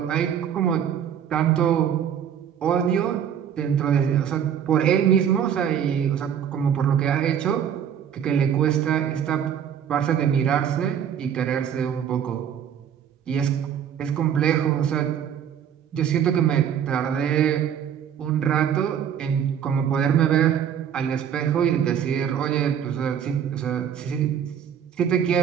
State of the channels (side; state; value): left; quieter; 8.8 dB